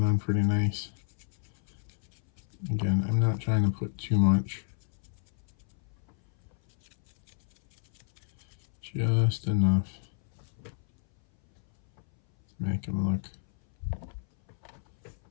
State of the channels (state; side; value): silent; right; 58 dB below the other